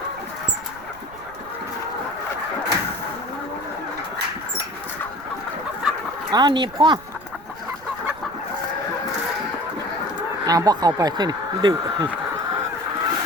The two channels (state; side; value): noise; right; rumble, 21 dB below the sound